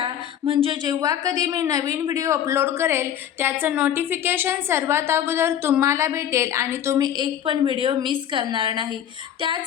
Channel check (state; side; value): quieter; right; 10.1 dB